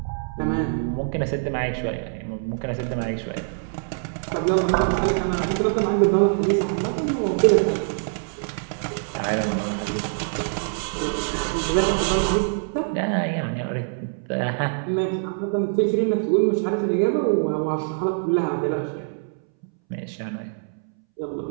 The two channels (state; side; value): silent; left; 62 dB below the other